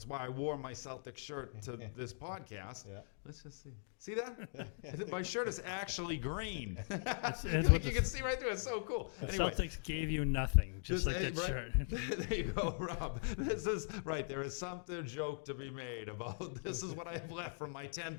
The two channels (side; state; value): right; silent; digital silence